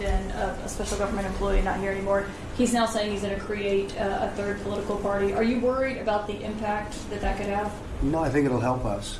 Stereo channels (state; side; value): identical; both; correlation 1.00